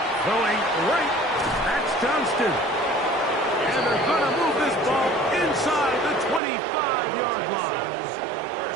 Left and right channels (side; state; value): left; drops out; at 6.4 s